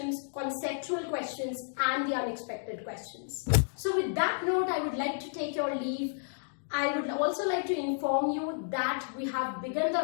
conceptual questions, and the unexpected questions. So with that note, I would like to take your leave. I would also like to inform you that we have begun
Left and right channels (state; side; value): silent; right; digital silence